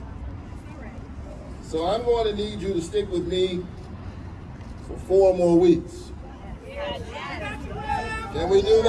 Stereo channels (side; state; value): both; identical; correlation 1.00